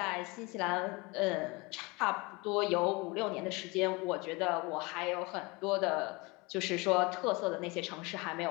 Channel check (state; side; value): quieter; right; 25.7 dB